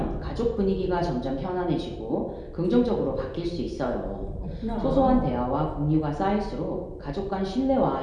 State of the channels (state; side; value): identical; both; correlation 1.00